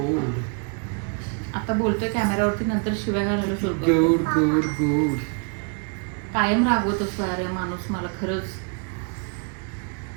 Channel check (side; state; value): left; quieter; 37.4 dB